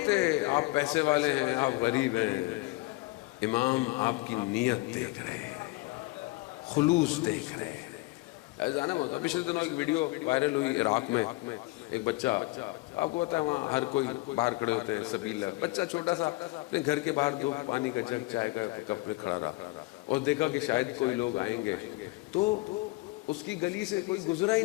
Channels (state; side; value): quieter; right; 22.6 dB